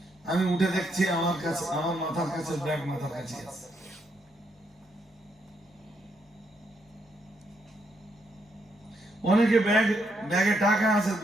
আমি উঠে দেখছি আমার কাছে, আমার মাথার কাছে ব্যাগ মাথার কাছে আছে। অনেকে ব্যাগে টাকা আছে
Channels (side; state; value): both; normal; correlation 0.77